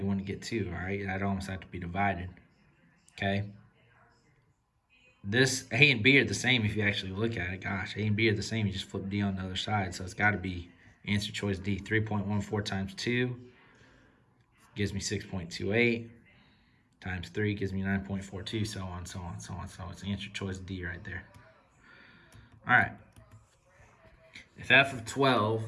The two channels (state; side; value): identical; both; correlation 1.00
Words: wouldn't get 2, all right? That'd almost have to be divided, okay? This A and B are the same if you actually look at it. Gosh, A and B are the same. You just flip D on the other side, so it's got to be answer choice D. 3.14 times 2 gives me 6.28. Times 3 gives me 9.42, so on, so on, so on. So it's answer choice D right there. All right. If f of 12